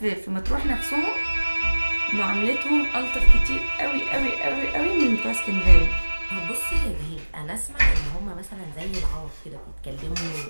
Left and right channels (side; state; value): both; inverted; correlation -1.00